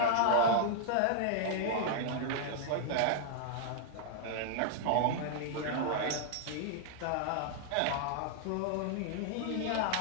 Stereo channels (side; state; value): both; different; correlation -0.01